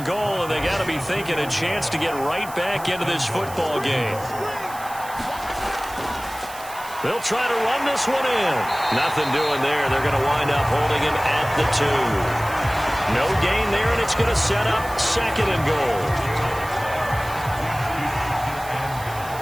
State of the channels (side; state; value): right; noise; hiss, 16 dB below the sound